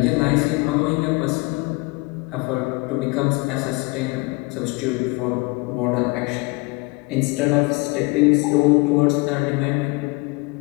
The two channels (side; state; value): right; quieter; 26.9 dB